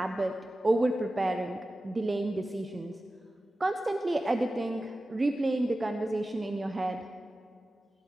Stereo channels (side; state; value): both; normal; correlation 0.95